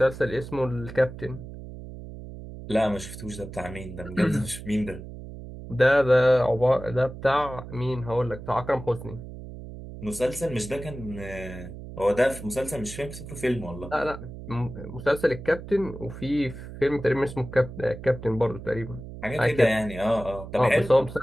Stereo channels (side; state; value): right; noise; hum, 12 dB below the sound